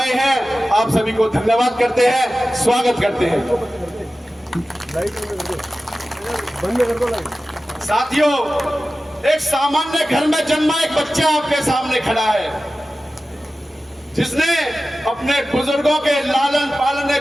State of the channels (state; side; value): normal; both; correlation 0.95